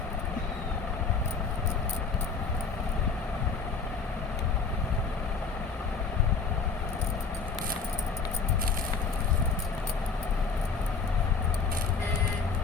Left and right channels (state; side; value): quieter; right; 4.9 dB